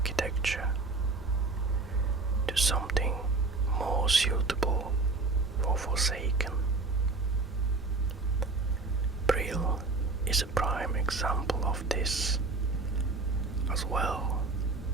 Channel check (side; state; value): left; quieter; 3.6 dB